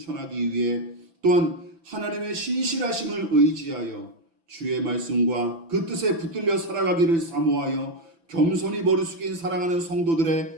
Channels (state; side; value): late; left; 6.0 ms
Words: 위해, 또한 하나님의 신실하심을 의지하여 주의 말씀과 그 뜻에 붙들려 살아가기를 사모하여 겸손히 머리 숙인 사랑하는